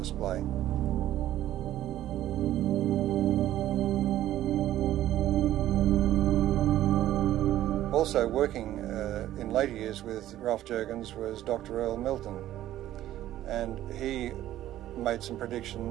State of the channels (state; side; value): quieter; left; 13.4 dB